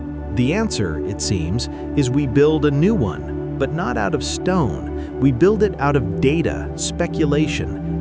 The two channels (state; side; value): identical; both; correlation 1.00